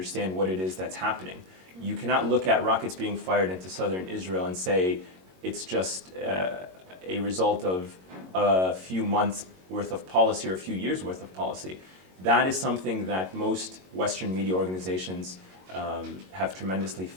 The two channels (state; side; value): late; left; 22 ms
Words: what it is that's happening. You cannot look at rockets being fired into southern Israel and say it's just a result of a few months worth of policy or a few years worth of policy. That is something that most Western media organizations have tremendously